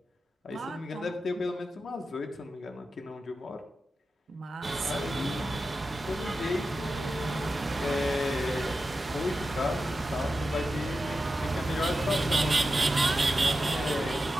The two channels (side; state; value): both; normal; correlation 0.91